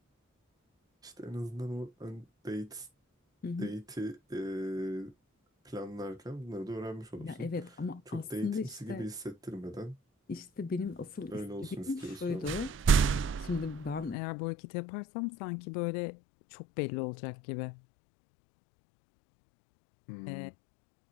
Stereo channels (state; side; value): drops out; right; at 14.2 s